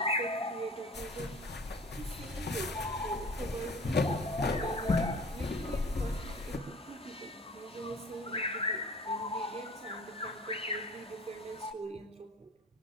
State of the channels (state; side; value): normal; both; correlation 0.44